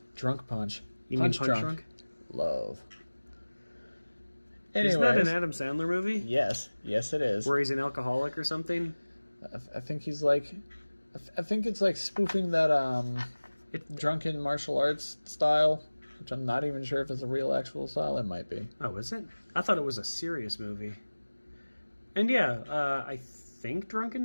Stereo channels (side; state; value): both; inverted; correlation -1.00